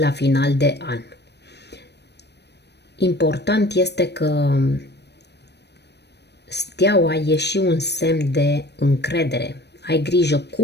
final de an. Important este că Steaua e și un semn de încredere. Ai grijă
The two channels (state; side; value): late; right; 0.49 ms